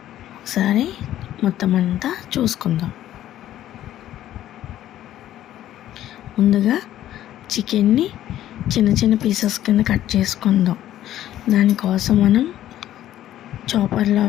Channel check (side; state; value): right; quieter; 12.7 dB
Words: ఒకసారి మొత్తం అంతా చూసుకుందాం. ముందుగా చికెన్ని చిన్న చిన్న పీసెస్ కింద కట్ చేసుకుందాం. దానికోసం మనం చాపర్లో